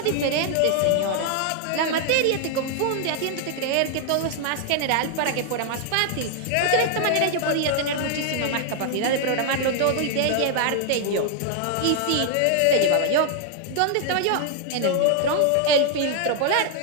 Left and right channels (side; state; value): both; different; correlation 0.00